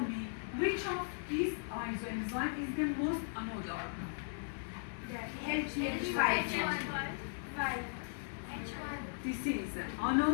which of these isoenzyme is the most anodal? H5. This is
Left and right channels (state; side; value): silent; right; 53 dB below the other